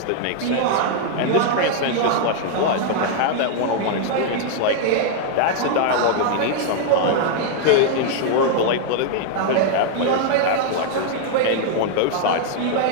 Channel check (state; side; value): different; both; correlation 0.00